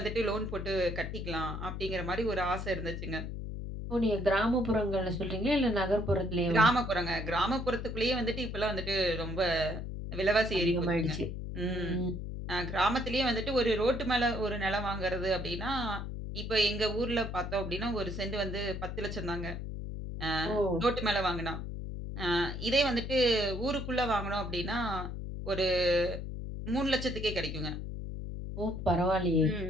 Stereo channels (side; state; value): left; noise; hum, 6 dB below the sound